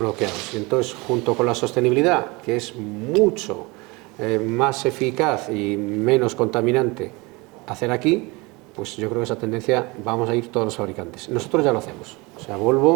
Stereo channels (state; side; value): quieter; left; 25.2 dB